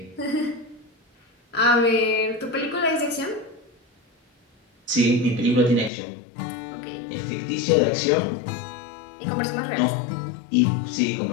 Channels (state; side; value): drops out; right; at 5.9 s